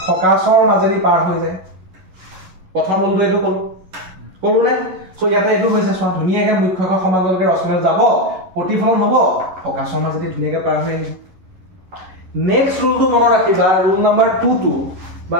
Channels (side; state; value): left; late; 11 ms